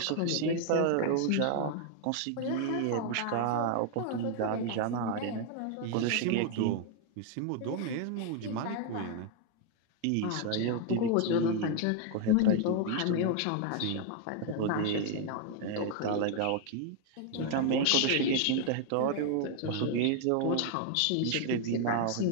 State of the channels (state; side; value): different; both; correlation 0.00